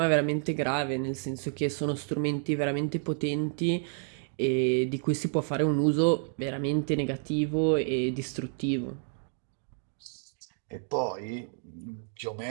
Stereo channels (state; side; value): silent; left; 57 dB below the other